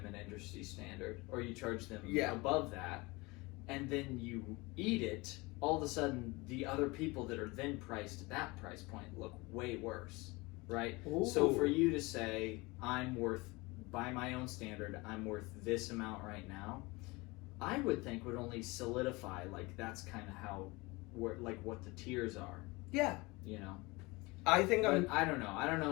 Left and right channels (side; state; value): right; quieter; 24.1 dB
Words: an industry standard, or you charge them above that, and then you eat it, all of a sudden the other people that are then priced at that price point look way worse. Right? Ooh. So for you to say, I'm worth, by my own standard, I'm worth this amount right now, I would think would only solidify, like, that's kind of how, like, what the tiers are. Yeah. You know? I think I don't know. I don't